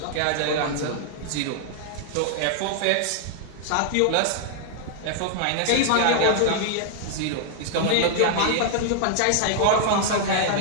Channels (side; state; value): both; different; correlation -0.01